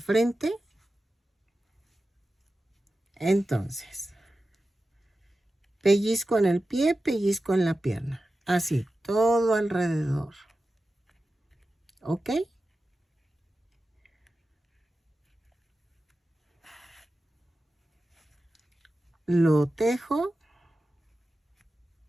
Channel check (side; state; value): both; normal; correlation 0.93